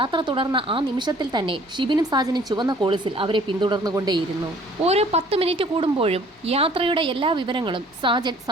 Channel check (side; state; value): both; normal; correlation 0.55